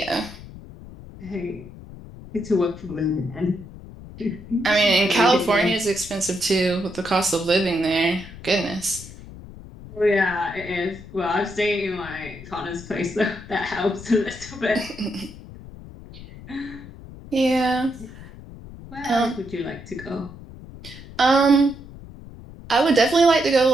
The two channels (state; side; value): noise; left; rumble, 16 dB below the sound